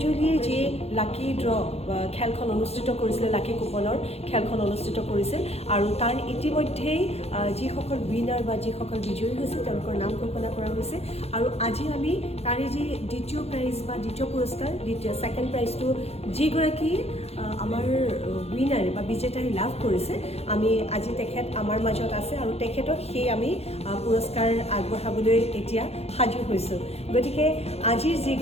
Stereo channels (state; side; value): late; right; 0.30 ms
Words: যি লাকি ড্ৰ খেলখন অনুষ্ঠিত কৰিছিলে লাকি কুপনৰ খেলখন অনুষ্ঠিত কৰিছিল আৰু তাৰ ইতিমধ্যেই যিসকল উইনাৰ বা যিসকল বিজয়ী হৈছে তেওঁলোকৰ নাম ঘোষণা কৰা হৈছে আৰু আজি আমি তাৰে যি দ্বিতীয় প্ৰাইজ বা দ্বিতীয় পুৰস্কাৰ ছেকেণ্ড প্ৰাইজটো যিগৰাকী আমাৰ উইনাৰ বা বিজেতাই লাভ কৰিছে আমি আজি তেখেত আমাৰ মাজত আছে আৰু তেখেতক সেই আমি পুৰস্কাৰ আগবঢ়াবলৈ এতিয়া সাজু হৈছোঁ গতিকে আজিৰ